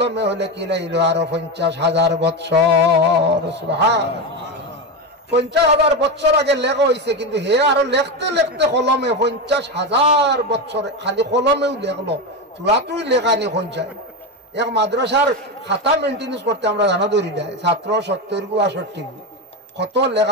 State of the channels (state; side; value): normal; both; correlation 0.15